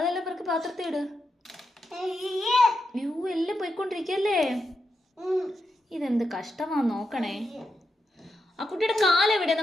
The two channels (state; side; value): normal; both; correlation 0.85